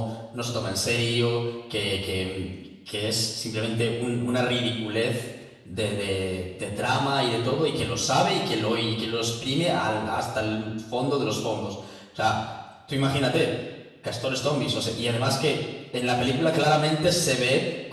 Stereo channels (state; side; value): identical; both; correlation 1.00